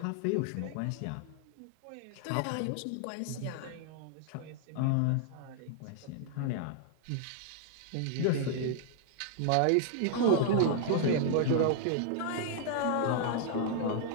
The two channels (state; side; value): different; both; correlation -0.01